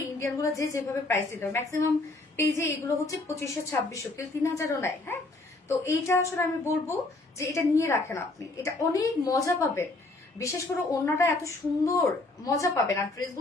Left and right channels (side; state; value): right; quieter; 3.0 dB